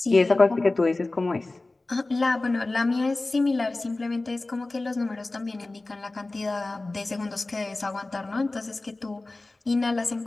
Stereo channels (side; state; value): right; quieter; 3.1 dB